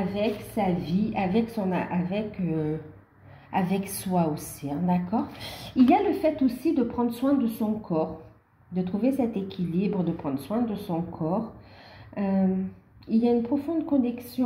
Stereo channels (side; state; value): both; identical; correlation 1.00